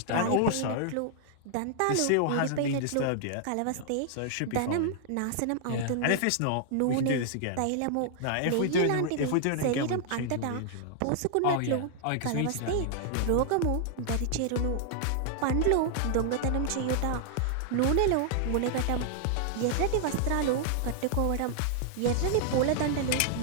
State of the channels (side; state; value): both; different; correlation -0.01